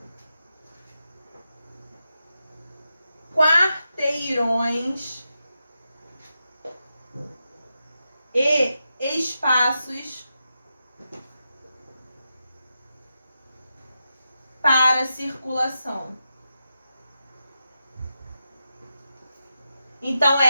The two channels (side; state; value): both; inverted; correlation -0.88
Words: quarteirões e espaços para circulação. Então,